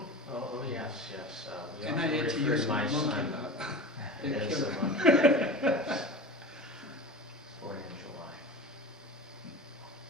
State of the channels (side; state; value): both; normal; correlation 0.32